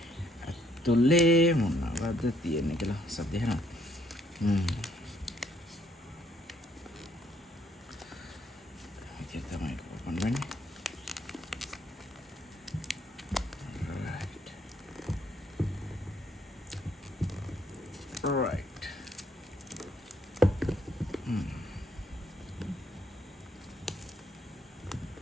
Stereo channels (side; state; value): both; normal; correlation 0.68